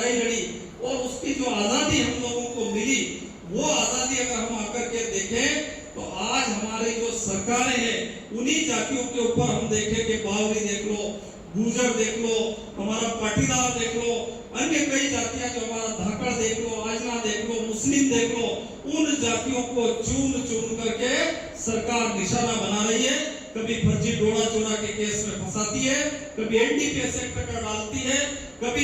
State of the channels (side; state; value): both; identical; correlation 1.00